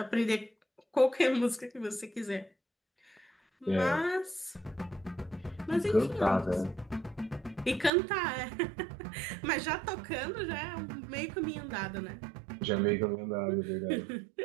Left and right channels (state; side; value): drops out; left; at 7.9 s